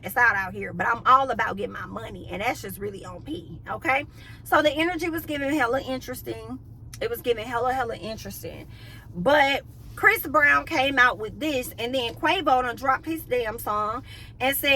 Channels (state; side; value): identical; both; correlation 1.00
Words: ass out here. But I'm all about getting my money, and that's just really on P, okay? So the energy was giving hella interesting. It was giving hella interesting. But Chris Brown came out with this, and then Quavo done dropped his damn song and